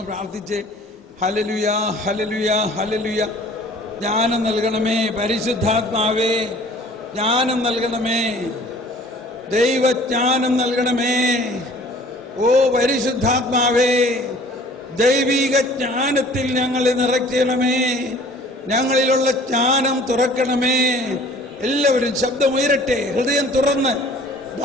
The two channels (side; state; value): both; normal; correlation 0.50